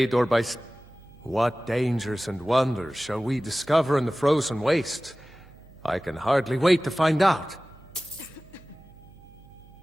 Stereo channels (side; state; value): right; noise; hum, 24 dB below the sound